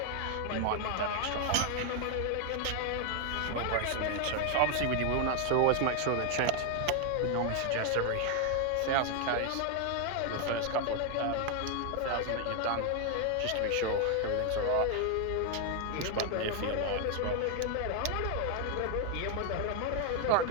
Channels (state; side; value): different; both; correlation 0.00